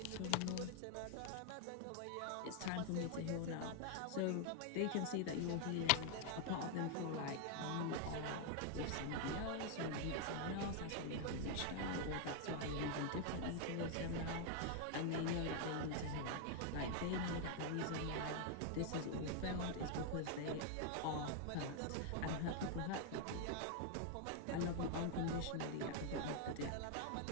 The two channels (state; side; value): different; both; correlation 0.00